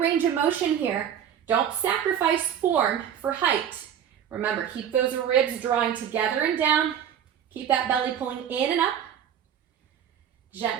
of motion here, don't sacrifice form for height. Remember, keep those ribs drawing together and down, keep that belly pulling in and up,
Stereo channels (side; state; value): left; quieter; 9.2 dB